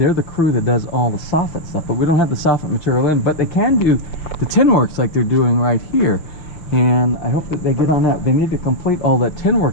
the crew that does all the soffit stuff, but we don't have the soffit material in, but they can do the tin works like they're doing right here. And I hope that they get on that. They need to complete all that tin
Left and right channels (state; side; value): late; right; 6.2 ms